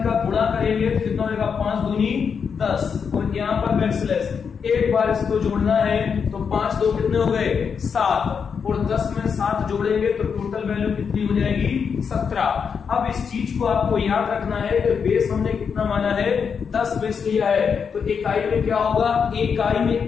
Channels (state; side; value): quieter; right; 6.4 dB